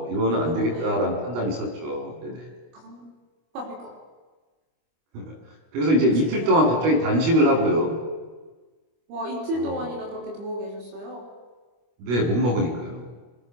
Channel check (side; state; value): left; late; 25 ms